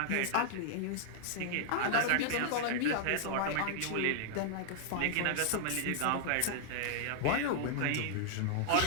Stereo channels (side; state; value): both; different; correlation -0.01